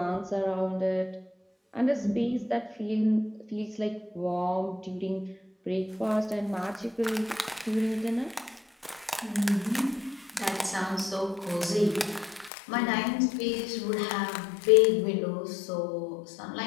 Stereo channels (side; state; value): right; drops out; at 12.5 s